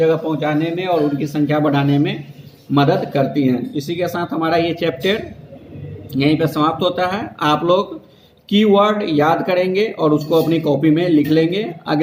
पहुंचाने में और उनकी संख्या बढ़ाने में मदद करती हैं। इसी के साथ हमारा ये चैप्टर यहीं पे समाप्त होता है। आप लोग कीवर्ड याद करेंगे और उसको अपनी कॉपी में लिख लेंगे।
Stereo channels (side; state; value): both; identical; correlation 1.00